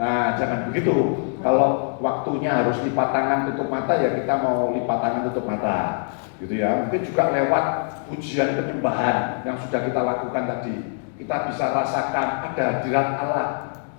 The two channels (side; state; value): right; silent; 63 dB below the other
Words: jangan begitu. Kalau waktunya harus lipat tangan tutup mata ya kita mau lipat tangan tutup mata. Gitu ya, mungkin juga lewat pujian penyembahan yang sudah kita lakukan tadi, kita bisa rasakan ada hadirat Allah,